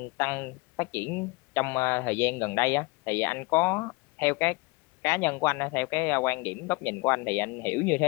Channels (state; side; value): quieter; right; 26.3 dB